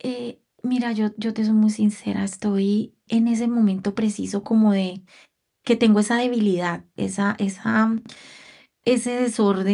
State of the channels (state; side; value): identical; both; correlation 1.00